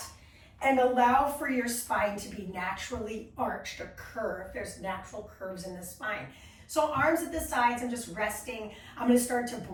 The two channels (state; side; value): identical; both; correlation 1.00